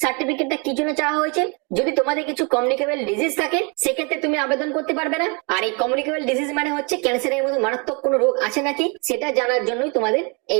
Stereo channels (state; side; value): quieter; left; 33.0 dB